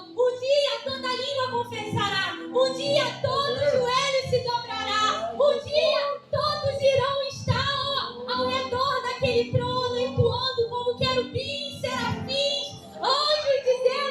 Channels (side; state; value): both; identical; correlation 1.00